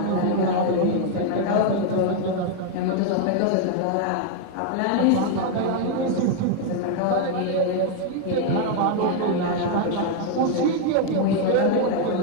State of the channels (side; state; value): both; different; correlation 0.00